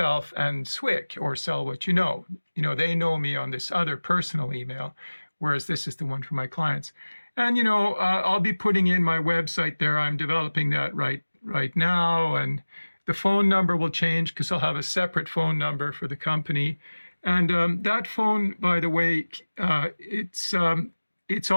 and SWYK or Sell What You Know. You know, they know me on this other personal email, whereas this is the one for my clients. And, you know, I'll be putting in my website there. I'm developing that right now, and the phone number will change because I'll have a separate phone number for the company. And that phone, by the way, it's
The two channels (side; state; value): both; inverted; correlation -1.00